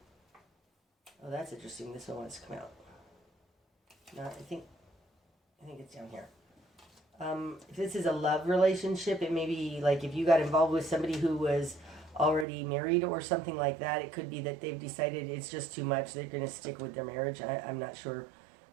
Oh, that's interesting. This one wants to come out. No, I think it's down here. If this is a love relationship, it may be like if you got involved with somebody who was already married or something like that, it could be that they've decided it's just too much. They're going to stick with their marriage. I'm not sure.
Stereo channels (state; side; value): drops out; left; at 12.5 s